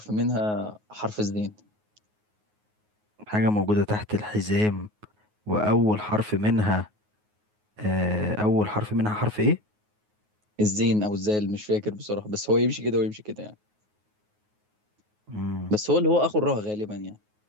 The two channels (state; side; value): late; left; 9.5 ms